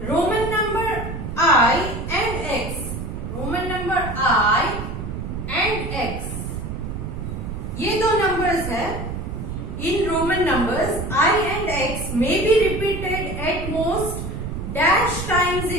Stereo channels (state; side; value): noise; right; rumble, 6 dB below the sound